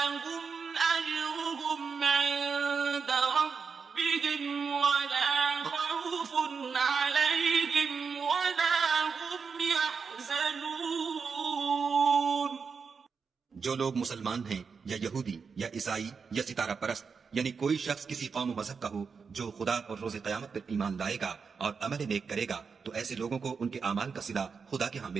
أجرهم عند ربهم ولا خوف عليهم ولا هم يحزنون. جو لوگ مسلمان ہیں یا یہودی یا عیسائی یا ستارہ پرست، یعنی کوئی شخص کسی قوم و مذہب کا ہو جو خدا اور روز قیامت پر ایمان لائے گا اور عمل نیک کرے گا تو ایسے لوگوں کو ان کے اعمال کا صلہ خدا کے ہاں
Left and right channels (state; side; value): quieter; left; 5.6 dB